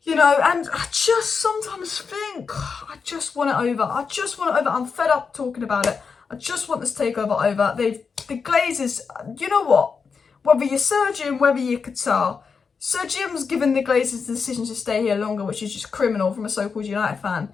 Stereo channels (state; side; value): quieter; right; 5.5 dB